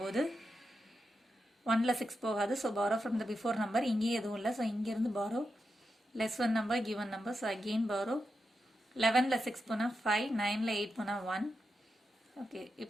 1ல் 6 போகாது. So borrow from the before number, இங்கேயும் எதுவும் இல்லை. ஸோ இங்கேருந்து borrow less one number given number. So again borrow 11ல் 6 போனால் 5, 9ல் 8 போனால் 1. ஓகே,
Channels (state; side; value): normal; both; correlation 0.87